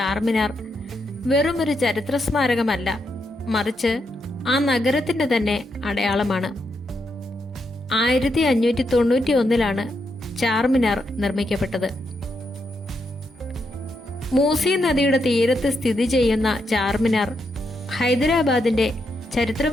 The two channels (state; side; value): normal; both; correlation 0.81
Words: വെറുമൊരു ചരിത്ര സ്മാരകമല്ല, മറിച്ച് ആ നഗരത്തിന്റെ തന്നെ അടയാളമാണ്. 1591 ചാർമിനാർ നിർമ്മിക്കപ്പെട്ടത്. മൂസി നദിയുടെ തീരത്ത് സ്ഥിതി ചെയ്യുന്ന ചാർമിനാർ ഹൈദരാബാദിന്റെ